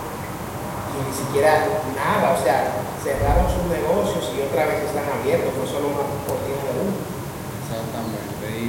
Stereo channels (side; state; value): both; identical; correlation 1.00